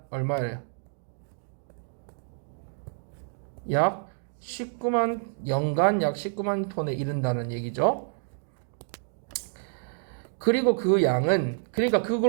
얼마예요? 약 19만, 연간 약 19만 톤에 이른다는 얘기죠. 그리고 그 양은, 그러니까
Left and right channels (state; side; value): silent; left; 59 dB below the other